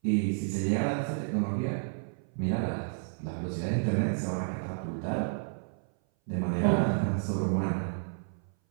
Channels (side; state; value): left; silent; 57 dB below the other